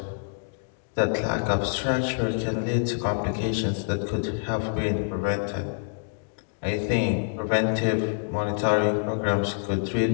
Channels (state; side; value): silent; right; digital silence